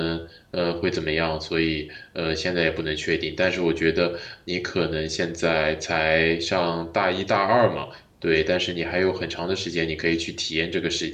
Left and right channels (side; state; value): both; identical; correlation 1.00